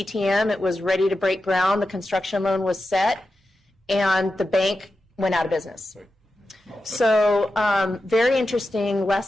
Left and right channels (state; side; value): normal; both; correlation 0.91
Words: It was ready to break ground. The construction loan was set, and the bank went out of business. So very interesting